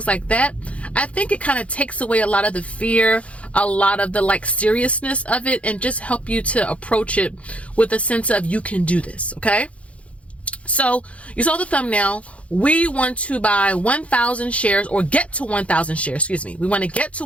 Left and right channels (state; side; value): late; right; 0.064 ms